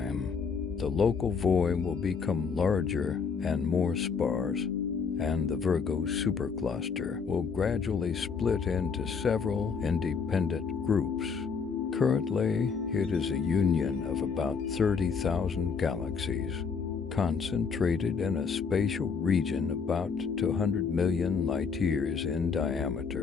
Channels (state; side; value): quieter; right; 5.7 dB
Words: the local void will become larger and more sparse, and the Virgo supercluster will gradually split into several independent groups. Currently, it is a union of about 30,000 galaxies, concentrated in a spatial region about 200 million light-years in